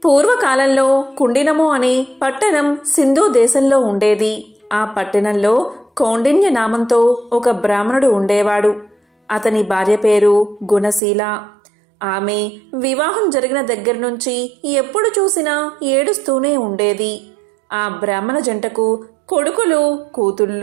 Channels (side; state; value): left; drops out; at 11.0 s